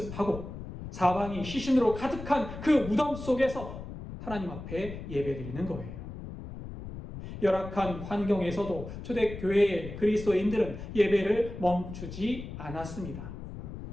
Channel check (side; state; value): left; noise; rumble, 10 dB below the sound